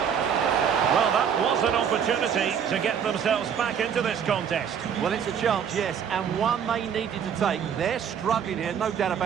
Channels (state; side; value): quieter; left; 7.9 dB